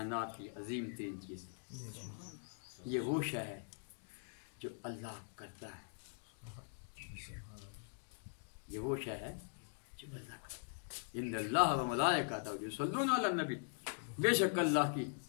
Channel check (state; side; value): silent; right; digital silence